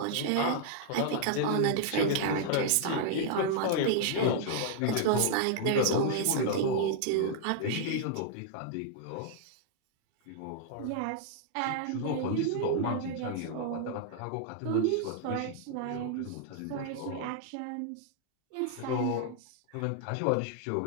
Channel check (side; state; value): both; different; correlation -0.01